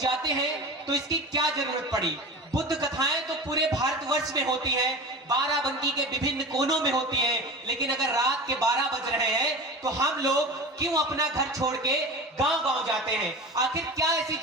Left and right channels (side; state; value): both; normal; correlation 0.33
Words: हैं तो इसकी क्या जरूरत पड़ी। बुद्ध कथाएं तो पूरे भारतवर्ष में होती हैं, बाराबंकी के विभिन्न कोनों में होती हैं, लेकिन अगर रात के 12 बज रहे हैं तो हम लोग क्यों अपना घर छोड़ के गांव-गांव जाते हैं। आखिर क्या ऐसी